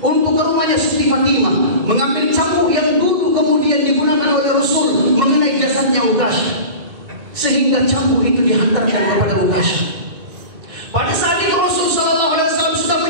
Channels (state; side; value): late; left; 2.7 ms